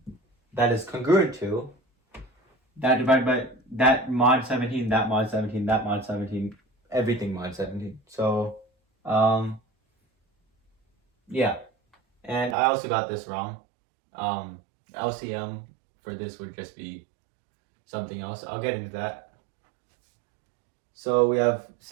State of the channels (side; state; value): left; drops out; at 12.6 s